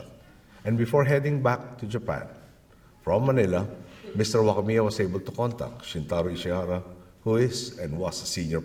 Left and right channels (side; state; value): both; identical; correlation 1.00